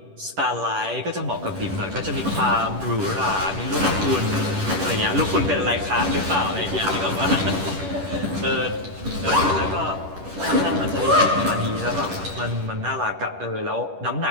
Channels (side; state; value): left; late; 10 ms